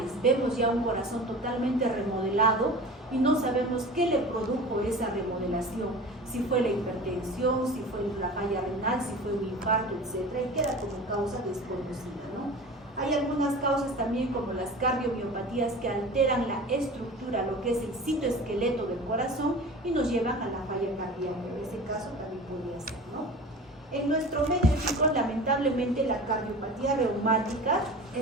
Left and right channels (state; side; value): normal; both; correlation 0.36